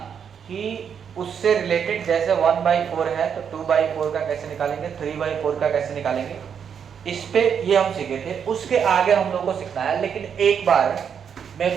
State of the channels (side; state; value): left; quieter; 7.5 dB